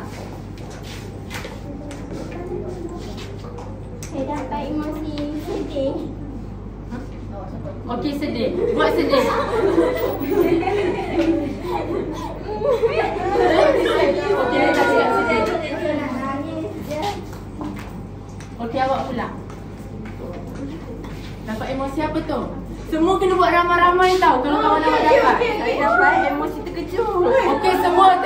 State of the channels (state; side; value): identical; both; correlation 1.00